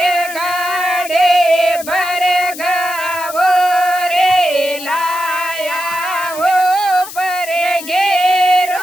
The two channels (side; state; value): left; noise; hiss, 13 dB below the sound